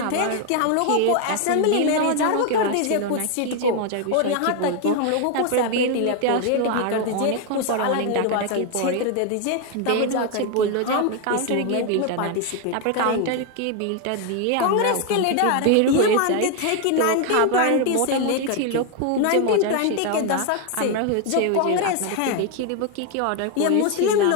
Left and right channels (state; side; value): different; both; correlation 0.01